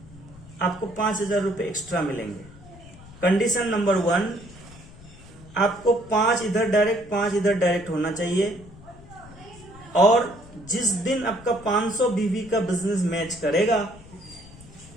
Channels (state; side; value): noise; left; rumble, 20 dB below the sound